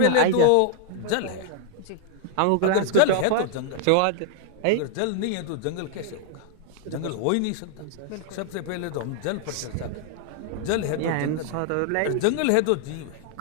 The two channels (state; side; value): different; both; correlation 0.00